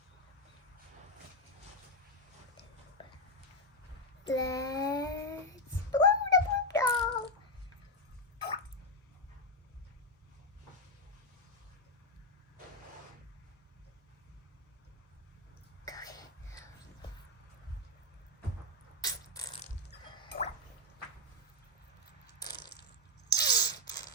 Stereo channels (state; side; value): normal; both; correlation 0.03